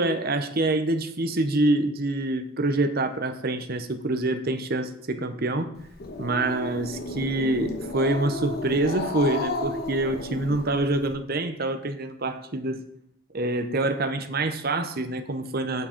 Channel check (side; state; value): both; normal; correlation 0.37